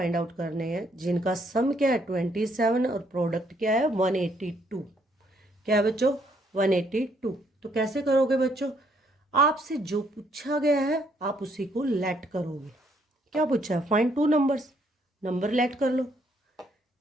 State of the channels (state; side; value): normal; both; correlation 0.70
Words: आउट करने हैं जिनका सम क्या है 27 और प्रोडक्ट क्या है 182। क्या है बच्चों 182। तो कैसे करोगे बच्चों, आपसे जो पूछा गया है आप उसी को लेट करोगे। क्या पूछा है, find two numbers, number let कर लो।